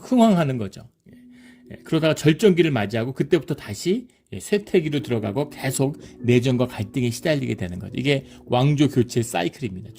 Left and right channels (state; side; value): identical; both; correlation 1.00